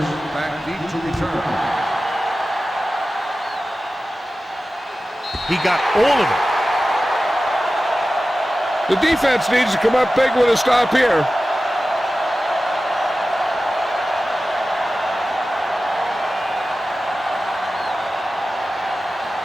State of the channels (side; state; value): both; normal; correlation 0.95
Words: back deep to return. He got all of it. The defense needs to come up big with a stop here.